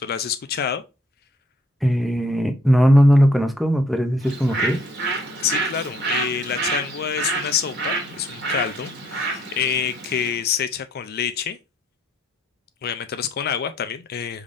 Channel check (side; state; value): both; normal; correlation 0.67